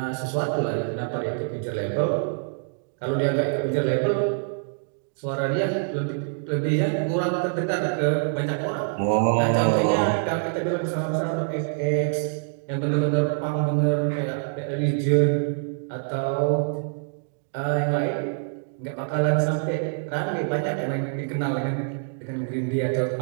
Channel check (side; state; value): left; silent; digital silence